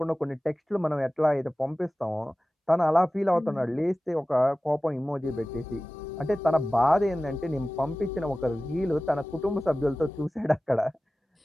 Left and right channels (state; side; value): normal; both; correlation 0.96